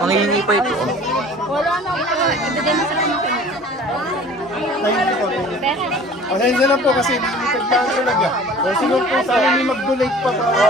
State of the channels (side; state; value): both; normal; correlation 0.46